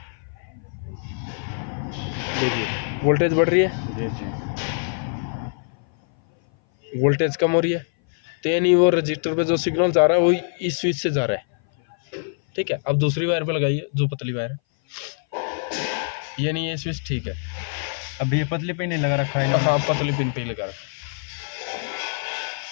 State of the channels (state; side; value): silent; right; 58 dB below the other